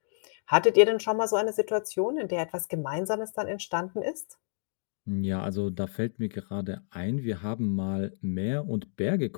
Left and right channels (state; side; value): silent; right; digital silence